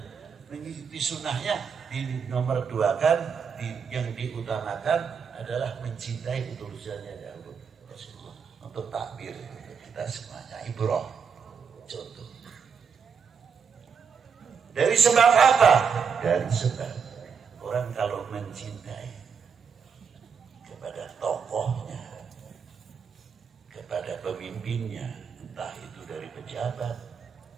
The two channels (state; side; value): quieter; left; 6.3 dB